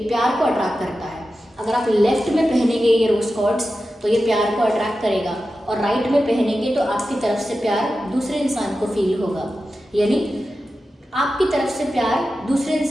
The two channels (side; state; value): both; normal; correlation 0.92